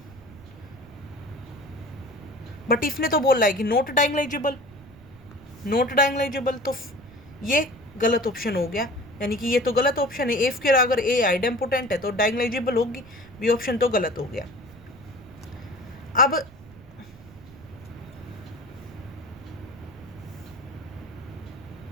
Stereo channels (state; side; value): noise; right; rumble, 21 dB below the sound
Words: बट इसने तो बोल रहा है कि नॉट डायगोनलाइजेबल, नॉट डायगोनलाइजेबल, तो ये गलत ऑप्शन हो गया, यानी कि ये तो गलत ऑप्शन है, ए स्क्वायर अगर ए आइडेम्पोटेंट है तो डायगोनलाइजेबल होगी, बी ऑप्शन तो गलत हो गया। अब